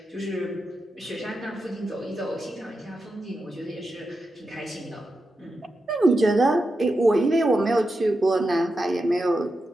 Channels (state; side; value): normal; both; correlation 0.89